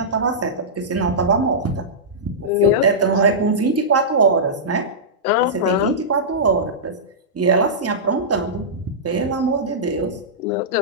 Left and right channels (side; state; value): both; normal; correlation -0.15